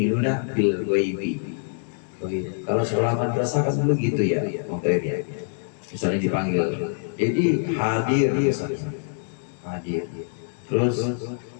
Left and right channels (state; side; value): silent; right; digital silence